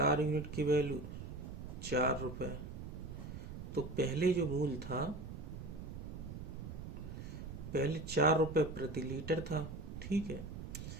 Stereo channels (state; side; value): noise; right; rumble, 9 dB below the sound